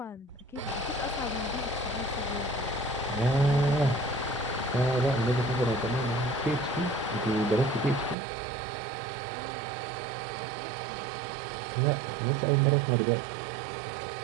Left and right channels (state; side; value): drops out; left; at 8.2 s